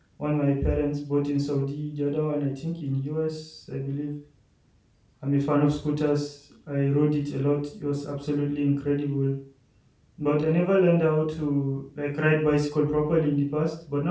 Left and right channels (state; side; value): identical; both; correlation 1.00